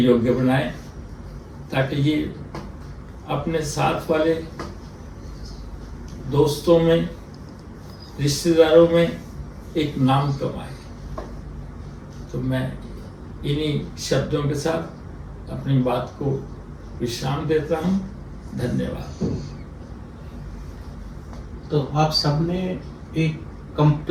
बनाएं, ताकि ये अपने साथ वाले दोस्तों में, रिश्तेदारों में एक नाम कमाए। तो मैं इन्हीं शब्दों के साथ अपनी बात को विश्राम देता हूँ। धन्यवाद। तो आप सबने एक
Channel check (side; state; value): both; identical; correlation 1.00